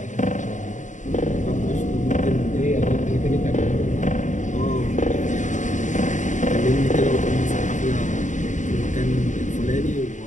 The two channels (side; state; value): right; late; 0.36 ms